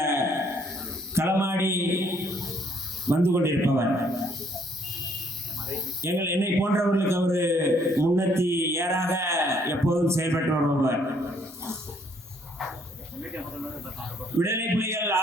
களமாடி வந்து கொண்டிருப்பவர். என்னை போன்றவர்களுக்கு அவர் முன்னத்தி ஏறாக எப்போதும் செயல்பட்டு வருபவர். விடுதலை புலிகள்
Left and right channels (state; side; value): normal; both; correlation 0.66